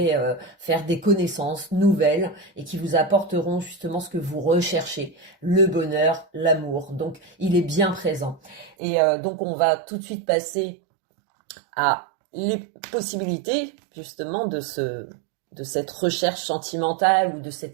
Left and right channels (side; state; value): left; drops out; at 8.8 s